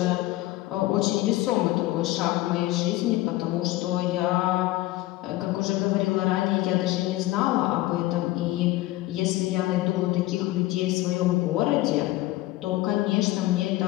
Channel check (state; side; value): quieter; right; 17.7 dB